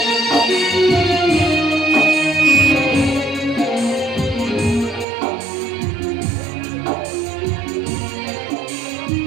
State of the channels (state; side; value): drops out; left; at 5.1 s